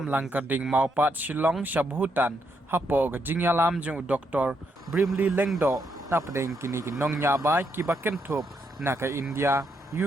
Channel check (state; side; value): normal; both; correlation 0.78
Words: langkarding maupat Shillong Bhutan hapo ka jingya lam jung Dr. Bremley Lyngdoh na pedeng kini ki nong nya ba ki baken thop na ka India